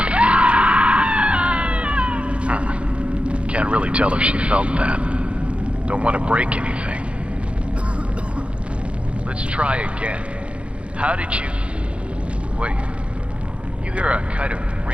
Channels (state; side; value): late; left; 0.060 ms